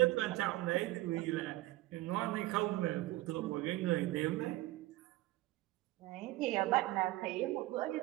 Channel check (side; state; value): left; quieter; 18.0 dB